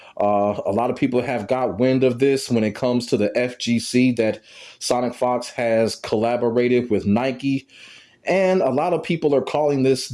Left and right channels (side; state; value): both; identical; correlation 1.00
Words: A lot of people have got wind of this when it comes to the FGC, that sonicfox has collaborated with Nike. And a lot of people are calling this